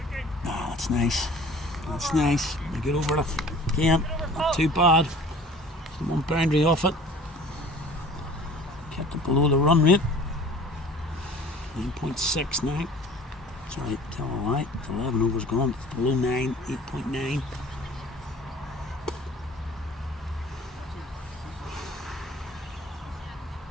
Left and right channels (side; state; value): both; normal; correlation 0.47